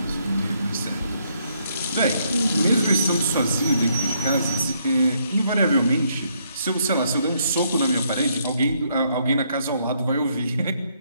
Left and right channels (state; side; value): inverted; both; correlation -0.72